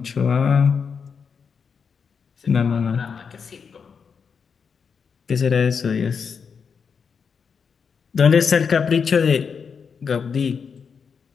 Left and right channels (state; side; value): quieter; right; 6.1 dB